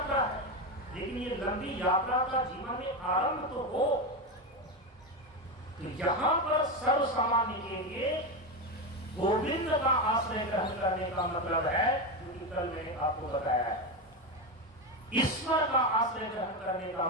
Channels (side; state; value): both; normal; correlation 0.14